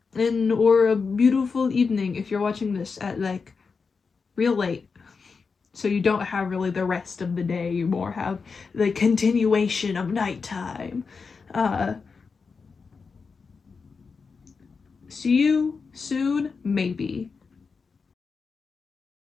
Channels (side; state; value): right; quieter; 5.0 dB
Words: Or a beautiful evening if you're watching this at like real late, so you don't have really the rest of the day, you more have the continuation of nighttime. See you soon, maybe.